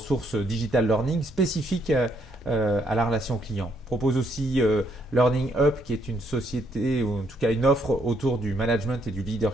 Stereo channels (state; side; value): normal; both; correlation 0.72